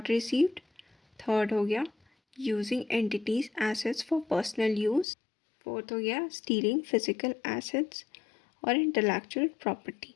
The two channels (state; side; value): drops out; right; at 5.1 s